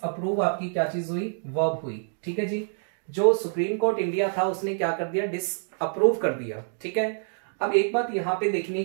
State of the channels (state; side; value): silent; left; digital silence